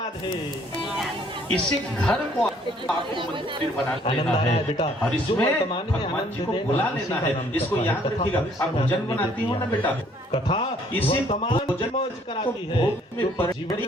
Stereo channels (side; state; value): both; normal; correlation 0.62